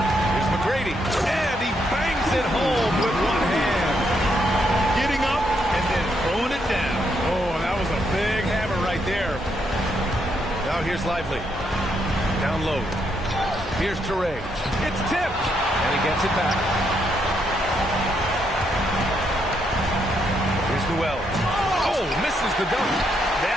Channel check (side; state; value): both; normal; correlation 0.77